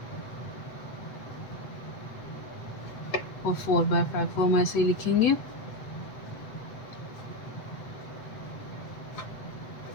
और 4/5 को हम ऐसे ही लिखेंगे।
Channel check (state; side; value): late; right; 7.9 ms